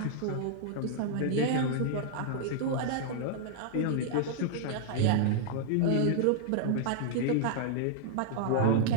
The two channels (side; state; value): both; different; correlation -0.01